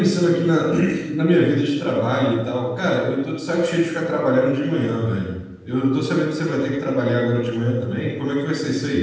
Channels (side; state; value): both; identical; correlation 1.00